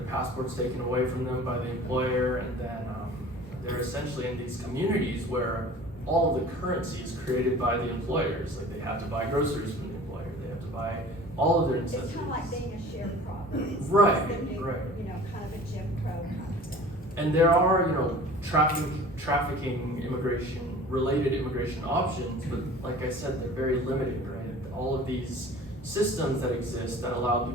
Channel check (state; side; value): normal; both; correlation 0.43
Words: passports taken away from them by the employer, and then they're essentially in these communities where all of the currency is created by the employers. Like they have to buy groceries from the employer, they have to buy all of their necessities. It's kind of like being a sharecropper. Right, It's the new, right. kind of a Jim Crow kind of thing. And there are, trafficking related immigration options, but like I said, they're very limited, right? All of these systems that exist that allow